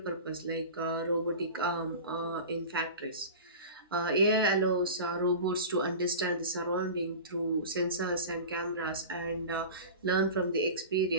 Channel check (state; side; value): inverted; both; correlation -0.33